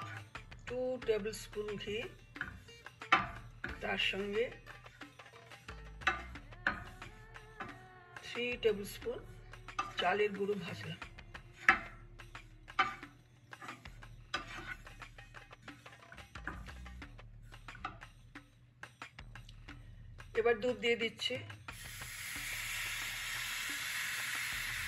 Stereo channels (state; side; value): identical; both; correlation 1.00